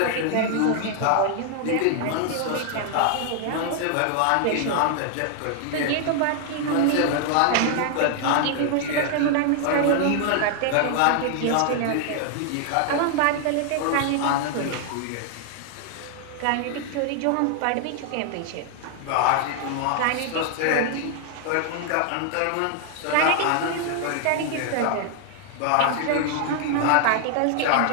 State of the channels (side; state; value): both; different; correlation 0.00